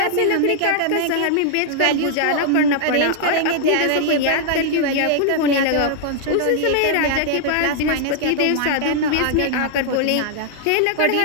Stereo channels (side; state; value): both; different; correlation -0.01